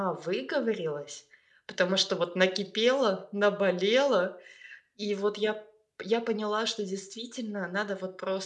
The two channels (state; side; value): identical; both; correlation 1.00